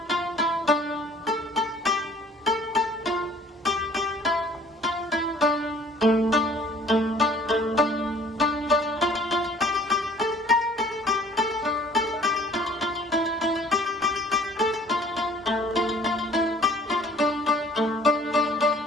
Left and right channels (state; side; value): normal; both; correlation 0.53